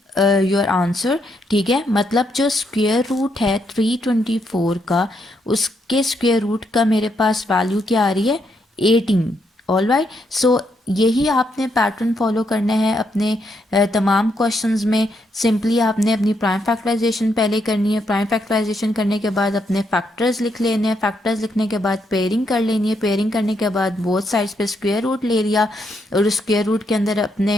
your answer, ठीक है। मतलब जो स्क्वायर रूट है 324 का, उसके स्क्वायर रूट का मेरे पास वैल्यू क्या आ रही है, 18। ऑल राइट, सो यही आपने पैटर्न फॉलो करना है अपने तमाम क्वेश्चंस में। सिंपली आपने अपनी प्राइम फैक्टराइजेशन पहले करनी है, प्राइम फैक्टराइजेशन करने के बाद अपने फैक्टर्स लिख लेने हैं, फैक्टर्स लिखने के बाद पेयरिंग कर लेनी है, पेयरिंग करने के बाद बोथ साइड्स पे स्क्वायर रूट ले लिया और उस स्क्वायर रूट के अंदर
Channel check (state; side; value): normal; both; correlation 0.77